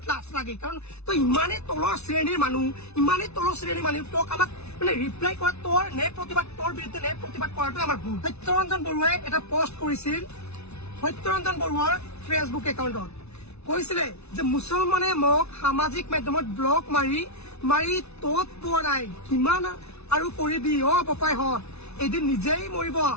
লাজ লাগে। কাৰণ তই ইমানেই তলৰ শ্ৰেণীৰ মানুহ, ইমানেই তলৰ শ্ৰেণীৰ মানুহ, তোক আমাক মানে ৰিপ্লাই কৰা তোৰ ন্যায় প্ৰতিবাদ, তোৰ বিৰুদ্ধে ন্যায় প্ৰতিবাদ কৰাটো আমাৰ ভুল। সত্যৰঞ্জন বৰুৱাই এটা পোষ্ট কৰিছিল সত্যৰঞ্জন বৰুৱাৰ ফেচবুক একাউণ্টত। কৈছিলে যে মুছলমানে মোক সামাজিক মাধ্যমত ব্লক মাৰি তত পোৱা নাই, কিমান আৰু কৰিবি বপাইহঁত, এদিন নিজেই মৰিব,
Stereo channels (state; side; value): late; right; 0.80 ms